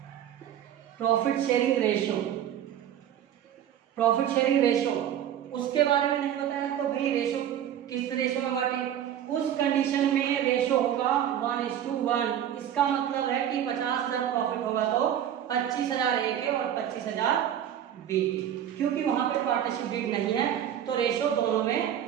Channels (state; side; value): quieter; left; 10.3 dB